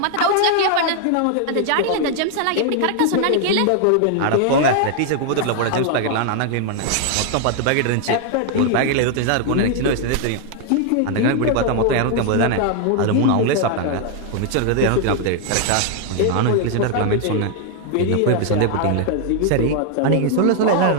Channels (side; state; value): both; different; correlation 0.00